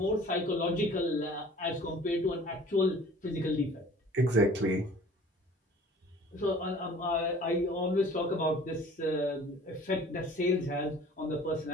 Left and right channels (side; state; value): both; normal; correlation 0.48